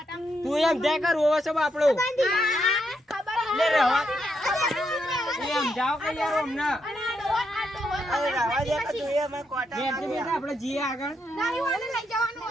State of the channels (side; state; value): both; normal; correlation 0.80